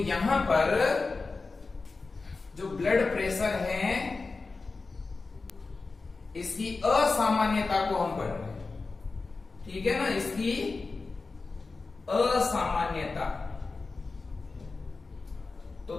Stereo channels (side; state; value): right; quieter; 4.0 dB